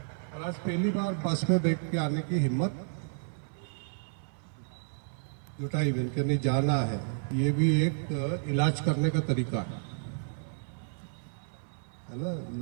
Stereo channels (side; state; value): left; silent; 57 dB below the other